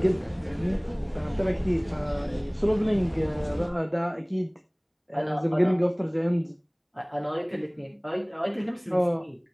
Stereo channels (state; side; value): identical; both; correlation 1.00